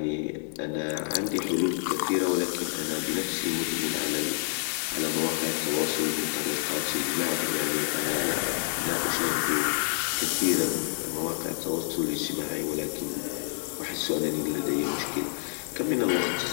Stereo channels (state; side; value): silent; right; digital silence